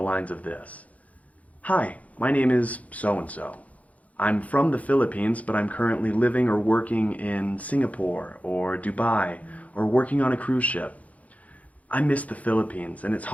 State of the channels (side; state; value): right; late; 0.069 ms